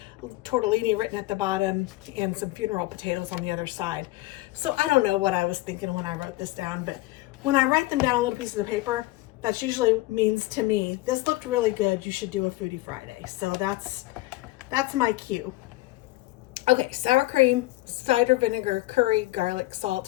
tortellini written at the bottom and some funeral potatoes on the other side. So I don't know what I was thinking when I wrote this down, but when I write them down on little pieces of paper, that usually means to me, this looked really good, you should do a Foodie Friday. So that's my cue. Okay, sour cream, cider vinegar, curry, garlic,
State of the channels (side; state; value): right; quieter; 18.9 dB